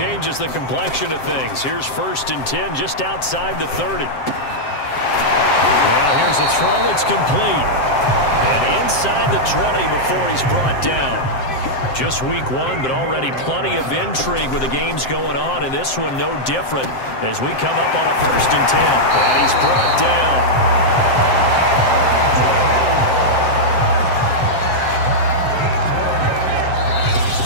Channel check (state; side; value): late; right; 7.6 ms